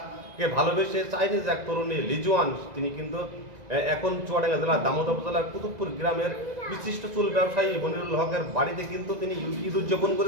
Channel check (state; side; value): late; left; 2.0 ms